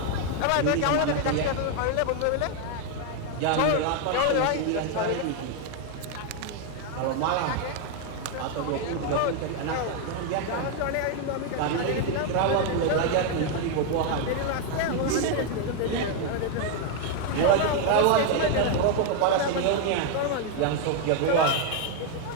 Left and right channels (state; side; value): different; both; correlation 0.01